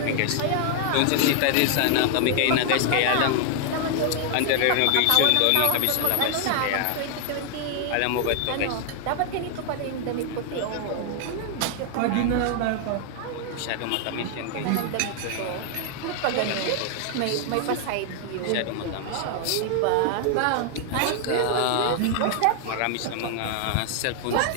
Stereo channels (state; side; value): different; both; correlation 0.00